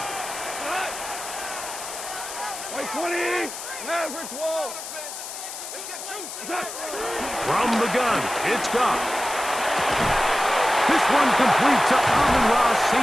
Wait, 20. Mavericks wall. From the gun, it's Goff. This one complete to Amon-Ra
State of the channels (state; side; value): noise; left; hiss, 9 dB below the sound